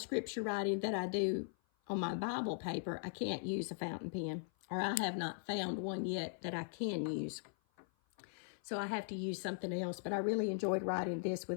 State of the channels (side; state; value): right; silent; 51 dB below the other